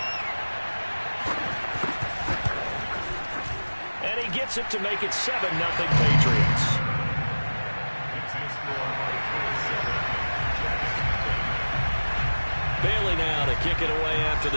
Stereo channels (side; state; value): both; inverted; correlation -1.00